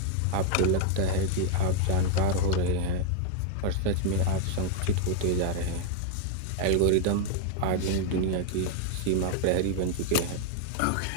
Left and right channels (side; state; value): both; different; correlation 0.00